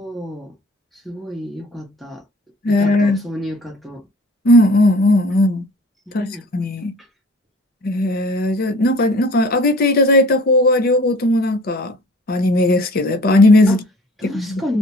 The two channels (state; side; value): normal; both; correlation 0.49